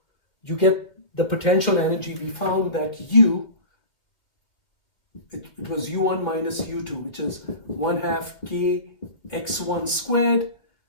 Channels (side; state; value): right; late; 2.8 ms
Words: you get the potential energy. We found that it was u1 minus u2, which is 1/2 k x1 squared